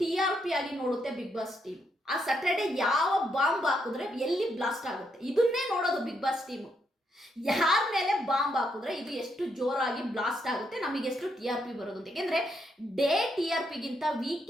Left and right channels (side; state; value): both; normal; correlation 0.78